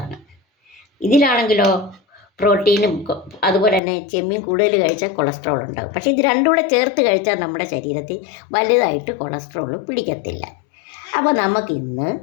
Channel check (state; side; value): drops out; right; at 3.8 s